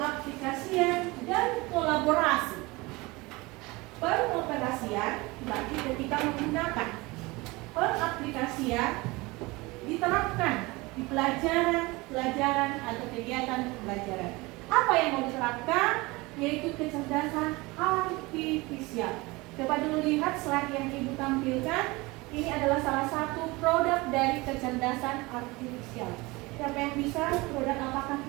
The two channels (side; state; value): left; quieter; 23.1 dB